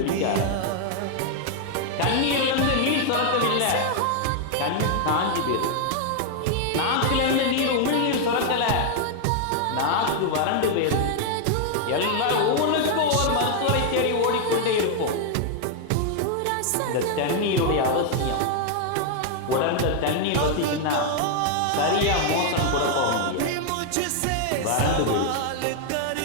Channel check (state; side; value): different; both; correlation 0.00